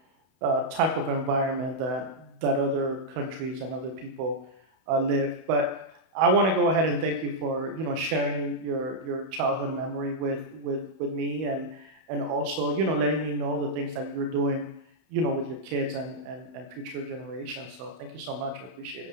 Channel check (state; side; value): late; left; 31 ms